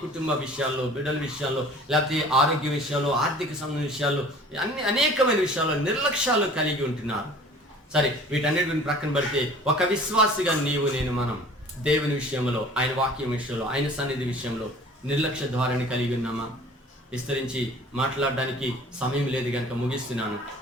కుటుంబ విషయాల్లో, బిడ్డల విషయాల్లో, లేకపోతే ఆరోగ్య విషయాల్లో, ఆర్థిక సంబంధ విషయాల్లో, అనేకమైన విషయాల్లో నిర్లక్ష్యాలు కలిగి ఉంటున్నారు. సరే, వీటన్నిటిని ప్రక్కన పెడితే ఒక విశ్వాసిగా మనం దేవుని విషయంలో, ఆయన వాక్యం విషయంలో, ఆయన సన్నిధి విషయంలో నిర్లక్ష్య ధోరణి కలిగి ఉన్నామా? విస్తరించి మాట్లాడడానికి సమయం లేదు కనుక ముగిస్తున్నాను.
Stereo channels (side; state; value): both; normal; correlation 0.48